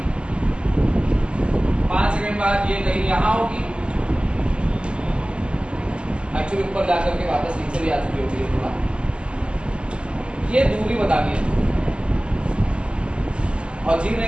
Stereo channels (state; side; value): late; left; 0.052 ms